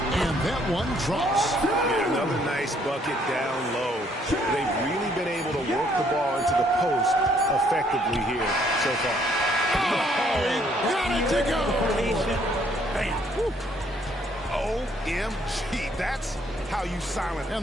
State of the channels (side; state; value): both; normal; correlation 0.66